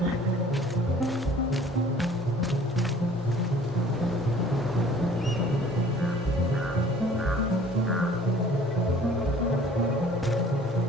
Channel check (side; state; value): both; normal; correlation 0.52